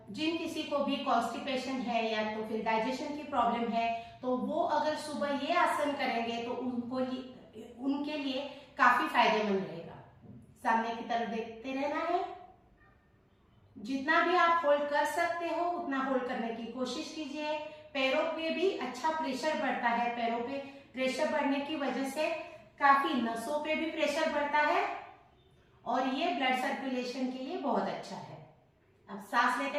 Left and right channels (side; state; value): both; identical; correlation 1.00